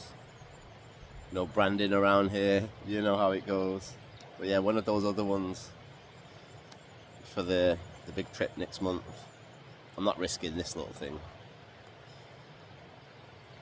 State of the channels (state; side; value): identical; both; correlation 1.00